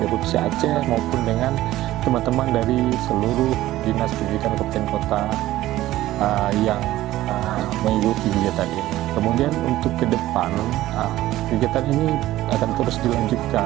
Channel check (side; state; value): left; quieter; 15.3 dB